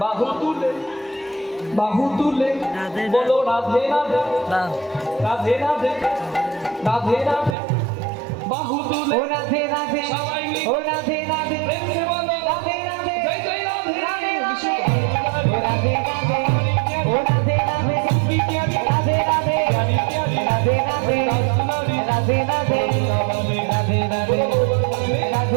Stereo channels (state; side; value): drops out; left; at 7.6 s